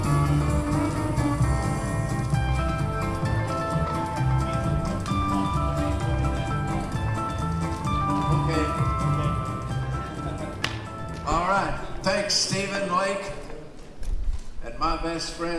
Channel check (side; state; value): both; identical; correlation 1.00